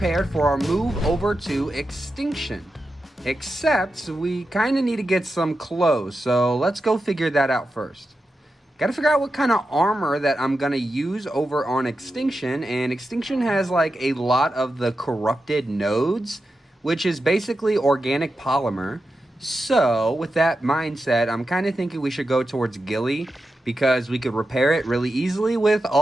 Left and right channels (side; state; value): both; normal; correlation 0.90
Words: for our move over to Extinction. Except we kind of need to get some clothes, so let's go figure that out first. Gotta figure out what kind of armor that I'm gonna use over on Extinction, and Extinction has like a lot of the corrupted nodes, which is basically organic polymer. So with that mindset, I'm kind of thinking we should go towards Gilly, because we could repair it really easily with